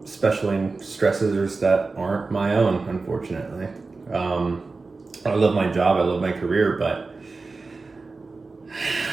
especially in stressors that aren't my own, unfortunately. Um, I love my job, I love my career, but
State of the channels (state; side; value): quieter; left; 3.9 dB